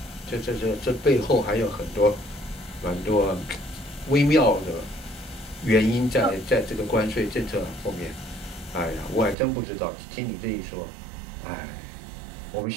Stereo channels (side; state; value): left; drops out; at 9.3 s